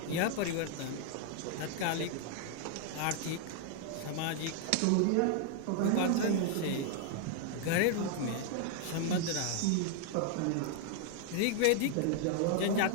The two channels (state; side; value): different; both; correlation 0.00